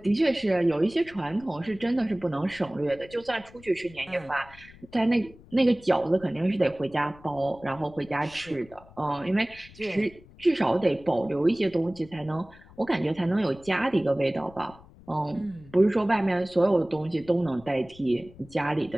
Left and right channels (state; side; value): noise; left; rumble, 22 dB below the sound